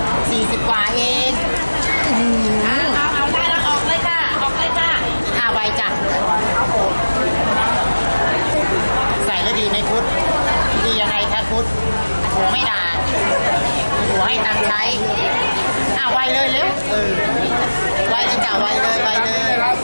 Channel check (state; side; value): inverted; both; correlation -1.00